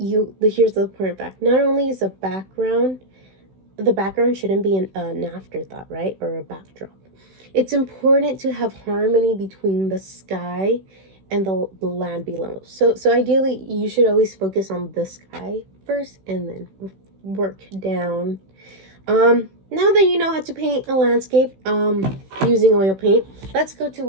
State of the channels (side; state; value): left; late; 16 ms